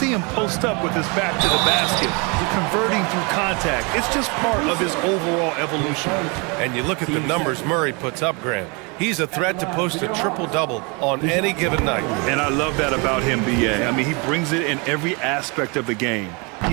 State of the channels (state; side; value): quieter; left; 30.9 dB